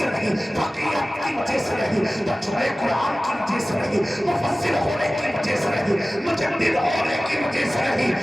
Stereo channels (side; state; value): both; normal; correlation 0.97